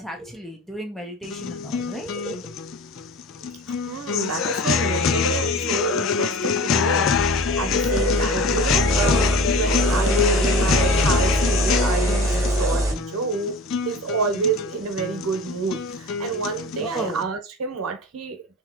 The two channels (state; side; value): normal; both; correlation 0.38